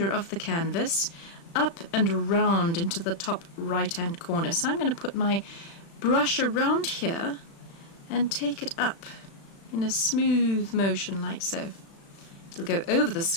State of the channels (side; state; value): right; late; 36 ms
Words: of the canvas up and around into the top right hand corner. So I'm going to put my brush around here and take it up in a smooth motion like so. It'll go over the